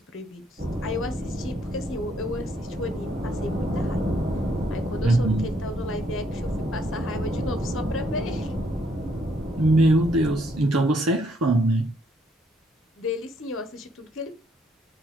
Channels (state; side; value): normal; both; correlation 0.70